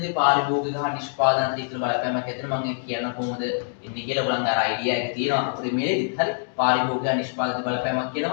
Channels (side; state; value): right; silent; digital silence